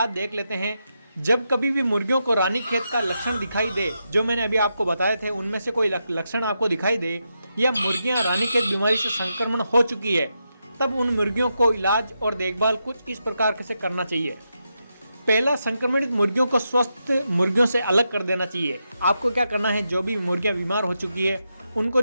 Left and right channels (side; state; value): both; inverted; correlation -0.85